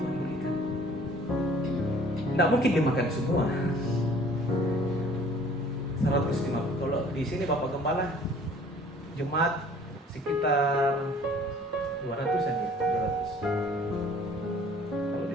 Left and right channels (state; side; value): normal; both; correlation 0.53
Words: berikan. Tidak mungkin dimakan semua. 150. Kalau di sini Bapak Gembala, jemaat sekitar 200-an ya, 200. Kalau